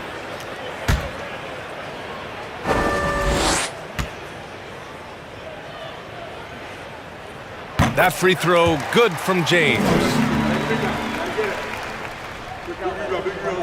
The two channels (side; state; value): both; identical; correlation 1.00